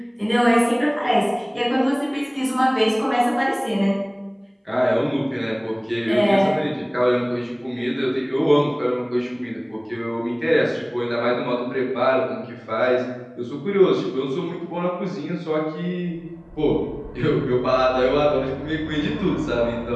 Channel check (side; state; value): both; identical; correlation 1.00